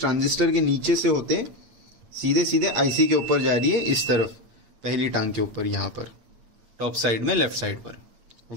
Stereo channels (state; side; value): late; left; 8.9 ms